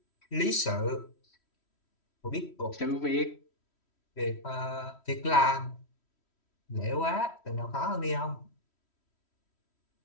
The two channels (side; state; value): right; late; 3.1 ms